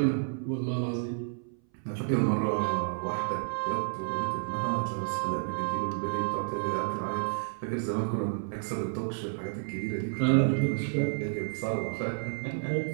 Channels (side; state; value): left; silent; 57 dB below the other